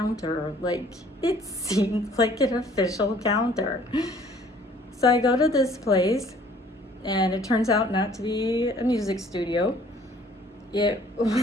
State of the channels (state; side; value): normal; both; correlation 0.56